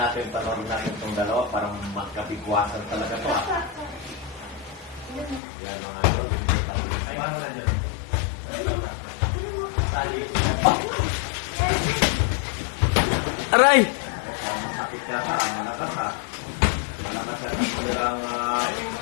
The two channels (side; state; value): right; drops out; at 5.4 s